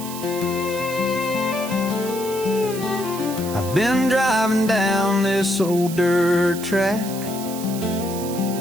I've been driving down this old dirt track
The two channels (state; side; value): noise; right; hiss, 11 dB below the sound